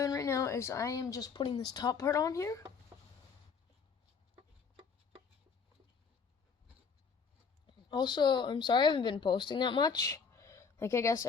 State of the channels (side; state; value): right; quieter; 5.7 dB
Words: right now is I am just putting this top part on here. Also, I'm sorry I haven't been posting that much. Like, I guess